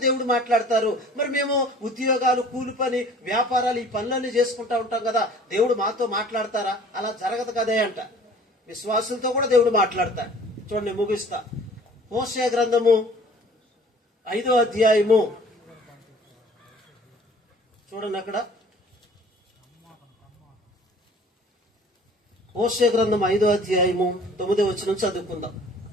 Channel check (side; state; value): both; normal; correlation 0.50